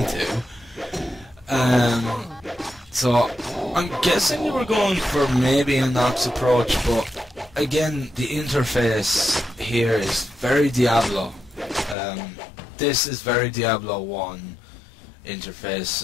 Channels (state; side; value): drops out; right; at 12.0 s